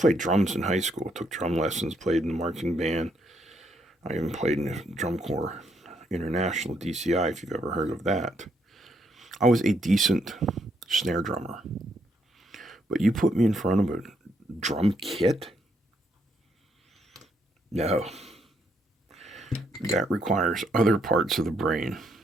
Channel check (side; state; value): both; normal; correlation 0.74